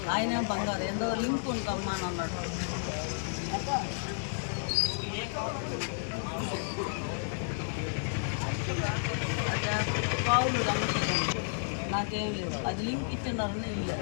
ఆయన బంగారు ఎంతో లింక్ ఉంటామ్మా అని అన్నాడు. అదే పావులు నాకేం లేదు, అది లింక్ ఇచ్చినారని ఇల్లు.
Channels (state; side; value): silent; right; digital silence